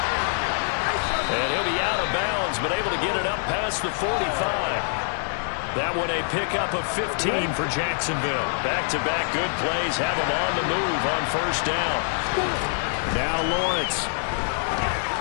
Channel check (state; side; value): silent; right; 57 dB below the other